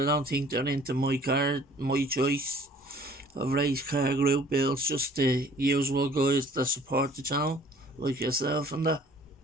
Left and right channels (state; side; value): normal; both; correlation 0.53